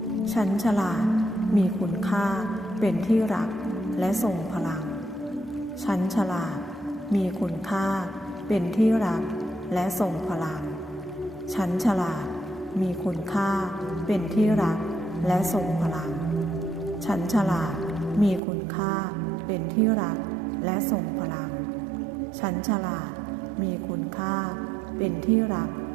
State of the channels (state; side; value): drops out; left; at 18.4 s